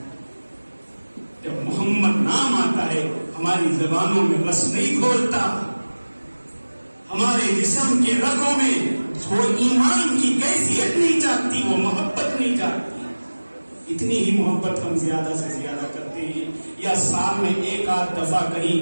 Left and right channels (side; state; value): both; inverted; correlation -1.00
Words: جب محمد نام آتا ہے ہماری زبانوں میں بس نہیں کھولتا، ہمارے جسم کے رگوں میں وہ ایمان کی کیفیت نہیں جاگتی، وہ محبت نہیں جاگتی. اتنی ہی محبت ہم زیادہ سے زیادہ کرتے ہیں. یا سال میں ایک آدھ دفعہ